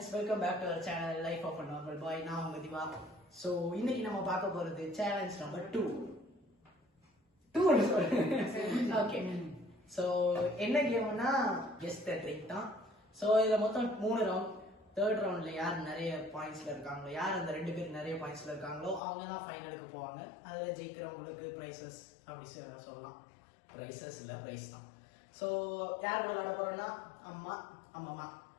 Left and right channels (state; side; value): drops out; right; at 19.0 s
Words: welcome back to our channel Life of a Normal Boy. நான் உங்க Diva. So இன்னைக்கு நம்ம பார்க்க போறது சேலஞ்ச் நம்பர் 2. ஓகே. So என்ன கேம்னா கெஸ் தி ட்ரிக் தான். So இதுல மொத்தம் 3 ரவுண்ட். தேர்ட் ரவுண்ட்ல யார் நிறைய பாயிண்ட்ஸ்ல இருக்காங்களோ, யார் அந்த ரெண்டு பேர் நிறைய பாயிண்ட்ஸ்ல இருக்காங்களோ அவங்க தான் ஃபைனலுக்கு போவாங்க. அதுல ஜெயிக்கிறவங்களுக்கு பிரைசஸ் அப்படி சொல்லலாம். பிரைசஸ் இல்ல, பிரைஸ் தான். So யார் விளையாட போறோம்னா அம்மா